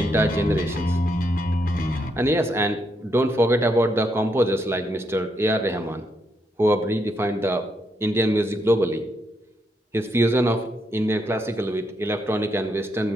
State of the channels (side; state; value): both; normal; correlation 0.78